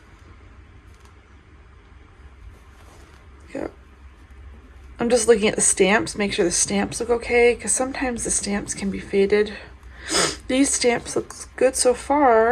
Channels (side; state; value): both; identical; correlation 1.00